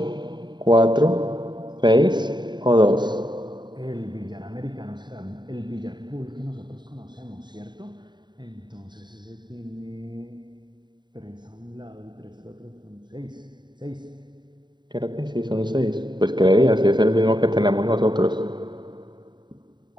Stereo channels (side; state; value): left; late; 0.22 ms